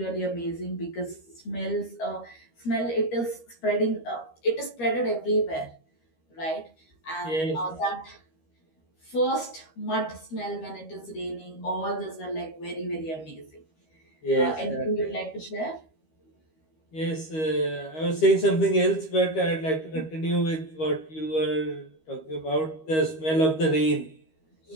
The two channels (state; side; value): late; right; 13 ms